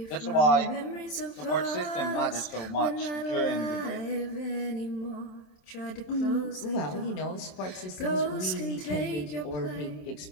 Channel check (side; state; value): right; late; 27 ms